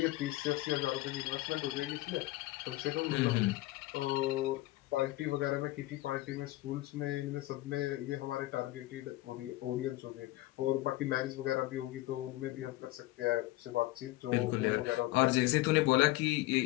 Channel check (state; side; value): quieter; right; 17.9 dB